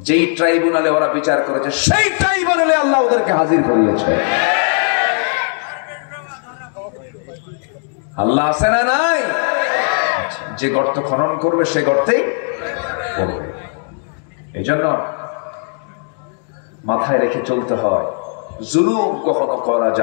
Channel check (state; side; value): silent; right; 57 dB below the other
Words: যেই ট্রাইব্যুনালে ওরা বিচার করেছে সেই ট্রাইব্যুনালে আল্লাহ ওদেরকে হাজির করিয়েছে। আল্লাহ আছে না নাই? যে গর্ত খনন করবে সে গর্তেই পড়বে। এই জন্য মাথায় রেখে চলতে হয়, জুলুম কখনো করা